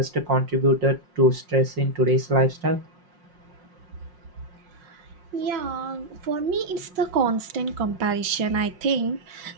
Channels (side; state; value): left; late; 5.5 ms